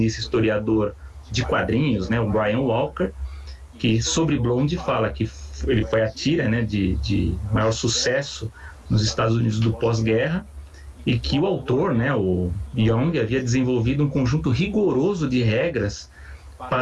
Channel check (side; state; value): both; identical; correlation 1.00